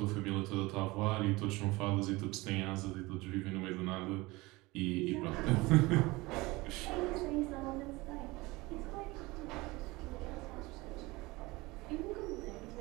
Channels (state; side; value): quieter; left; 22.0 dB